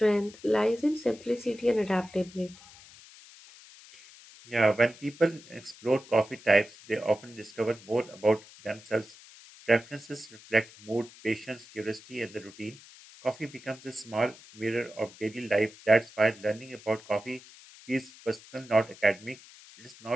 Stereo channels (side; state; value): left; noise; hiss, 21 dB below the sound